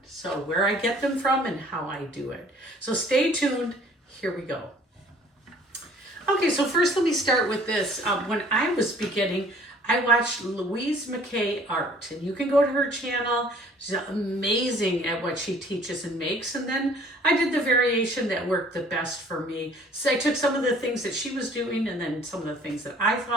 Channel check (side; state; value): both; normal; correlation 0.54